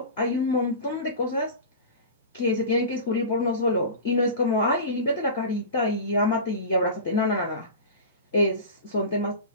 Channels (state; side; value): inverted; both; correlation -0.30